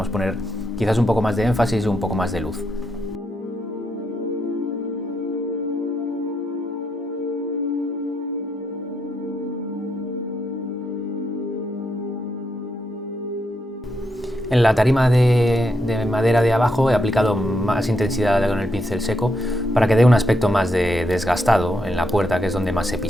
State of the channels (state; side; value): normal; both; correlation 0.80